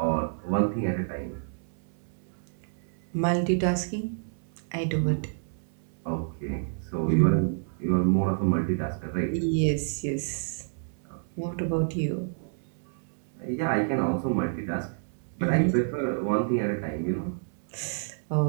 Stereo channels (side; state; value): left; silent; 59 dB below the other